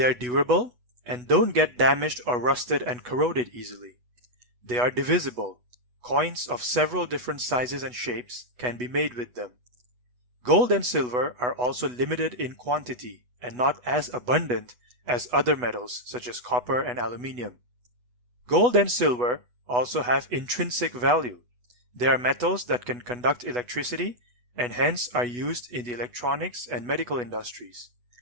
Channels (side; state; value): left; late; 8.1 ms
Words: are durable and don't get damaged or rusted and corroded easily. They are divisible. Coins of several different sizes and shapes can be made with them. Gold and silver are also limited in quantity and not as abundant as other metals such as copper and aluminium. Gold and silver also have intrinsic value. They are metals that can conduct electricity and hence are used in the electronics and medical industries.